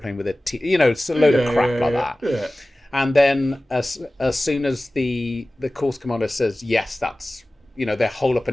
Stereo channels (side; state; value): both; normal; correlation 0.97